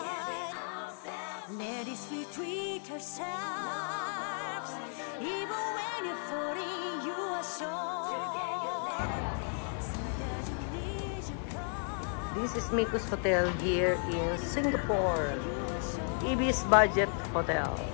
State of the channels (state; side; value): silent; right; 55 dB below the other